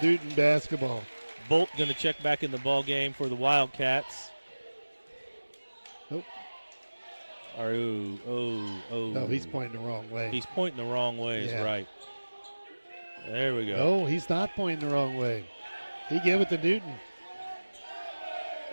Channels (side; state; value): both; inverted; correlation -1.00